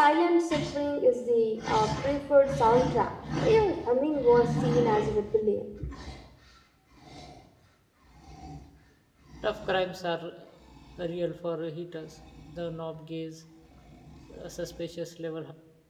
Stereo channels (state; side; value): identical; both; correlation 1.00